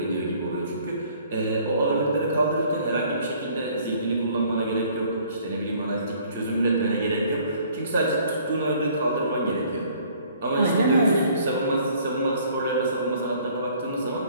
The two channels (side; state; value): both; inverted; correlation -0.58